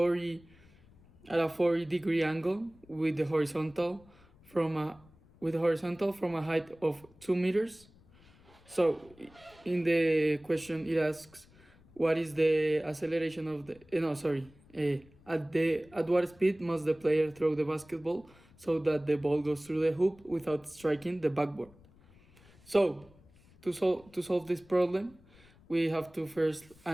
40-degree angle with the horizontal from a height of 2 meters. So in the question it asks what is the acceleration of the at what speed must the player throw the basketball so that the ball goes through the hoop without striking the backboard. So to solve this problem, we have to first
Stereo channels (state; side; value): noise; left; rumble, 27 dB below the sound